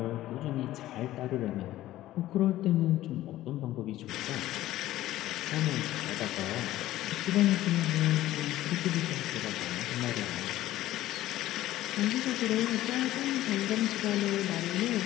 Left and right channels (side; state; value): right; quieter; 14.8 dB